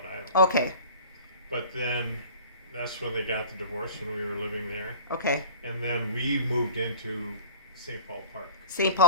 Island. okay, But then that's when they got the divorce when we were living there. okay. And then we moved into St. Paul Park. St.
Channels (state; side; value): inverted; both; correlation -0.43